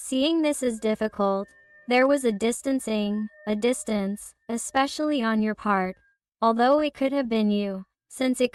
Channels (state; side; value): identical; both; correlation 1.00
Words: this is difficult, there was a distancing, a distance, especially on your part, although it could have been you, since it